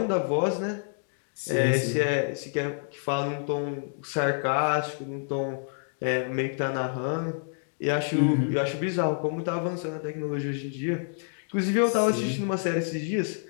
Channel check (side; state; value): right; silent; digital silence